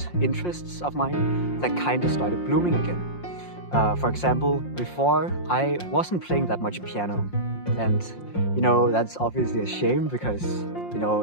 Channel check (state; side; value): late; right; 5.6 ms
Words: interests of mine that kind of started blooming again. For example, before I wasn't playing that much piano, and you know, that's obviously a shame because, you